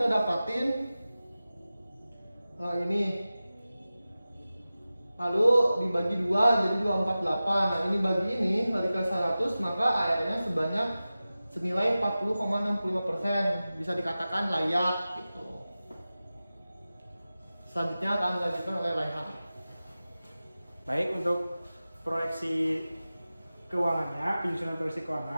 dapatin ini, lalu dibagi 2 jadi 248. Nah, ini bagi ini dikali 100 maka ARR-nya sebanyak senilai 40,65%, bisa dikatakan layak gitu. Selanjutnya akan dilanjutkan oleh Raihan. Baik, untuk proyeksi keuangannya, penyusunan proyeksi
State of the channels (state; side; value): inverted; both; correlation -0.95